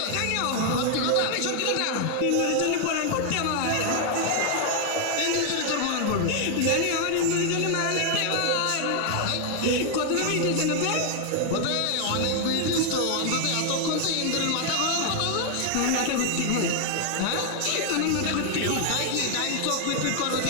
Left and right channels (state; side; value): different; both; correlation 0.00